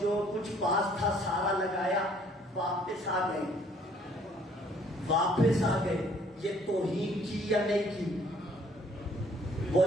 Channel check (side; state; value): both; normal; correlation 0.60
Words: کچھ پاس تھا سارا لگایا، واپس آ گئے، واپس آ گئے۔ یہ توہین کی یا نہیں کی؟